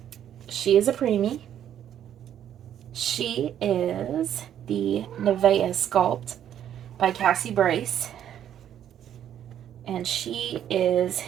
She is a preemie. She is the Nevea Sculpt by Cassie Brace. And she is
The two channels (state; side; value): quieter; left; 10.2 dB